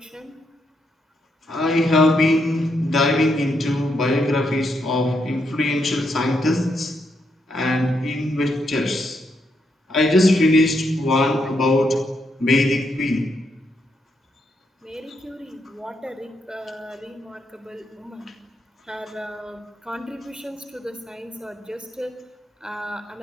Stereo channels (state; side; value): normal; both; correlation 0.79